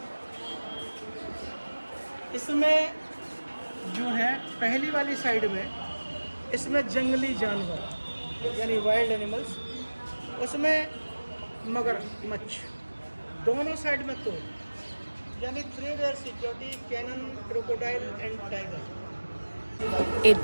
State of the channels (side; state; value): both; inverted; correlation -1.00